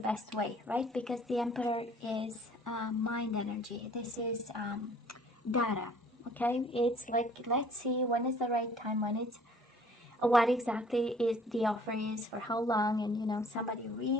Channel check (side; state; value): both; normal; correlation 0.54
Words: way, right? Because the Emperor is mind energy. This is data, okay? It's like, let's see when is the right time, when it's, what exactly is the offer is, for how long, and you know, somebody